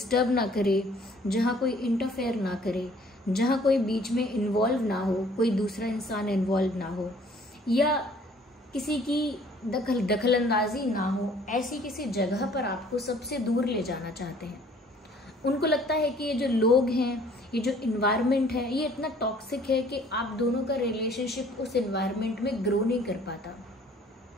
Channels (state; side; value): normal; both; correlation 0.56